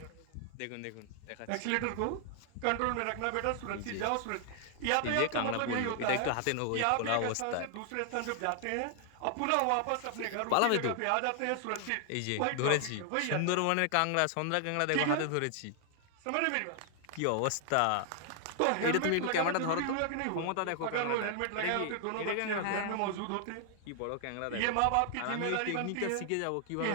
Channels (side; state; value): both; different; correlation 0.00